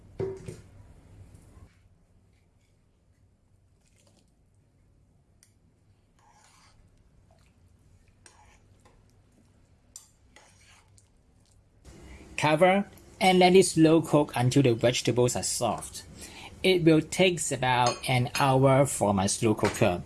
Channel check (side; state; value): both; identical; correlation 1.00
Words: Cover and let it slow cook until the vegetables are soft. It will take about an hour for my slow cooker